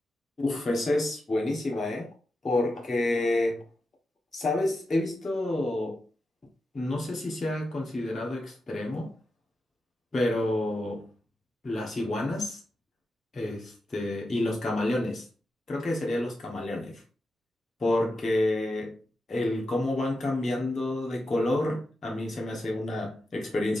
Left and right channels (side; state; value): both; normal; correlation 0.89